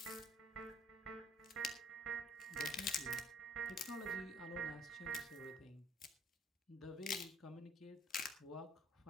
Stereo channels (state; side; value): normal; both; correlation 0.57